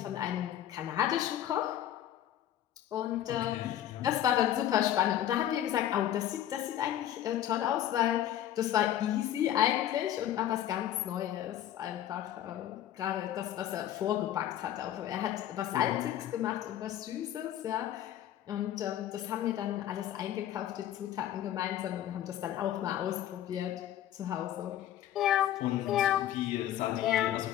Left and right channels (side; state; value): right; quieter; 11.8 dB